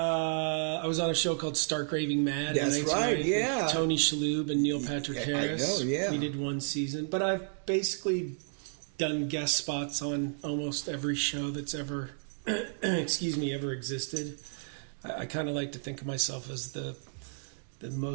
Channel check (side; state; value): left; silent; digital silence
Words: was on a show called Stark Raving Mad. That's right, yeah. With Tony Shalhoub and Neil Patrick Harris. I know, yeah. We did one season. But I've basically done guest spots on almost every show that's ever, ever existed. I kind of like to think of myself as the